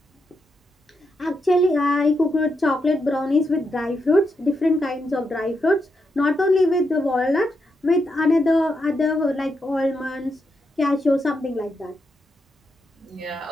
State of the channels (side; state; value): both; normal; correlation 0.83